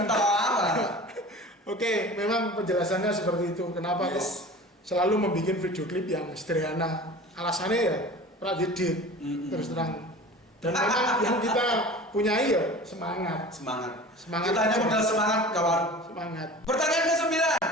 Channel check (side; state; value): both; normal; correlation 0.39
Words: apa? Oke, memang penjelasannya seperti itu. Kenapa kok selalu membuat video klip yang sederhana? Alasannya ya pradedit terus terang. Dan memang yang kita punyai ya semangat. Kita hanya modal semangat, kawan. Semangat. Pertanyaan ke-9.